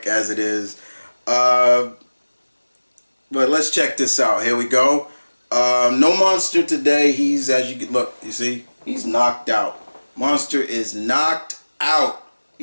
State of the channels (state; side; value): inverted; both; correlation -1.00